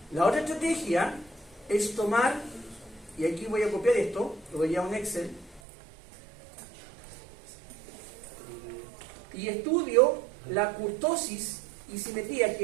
La otra estrategia es tomar, y aquí voy a copiar esto, lo voy a un Excel, y estudio la kurtosis y simetría,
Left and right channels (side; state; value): left; drops out; at 5.6 s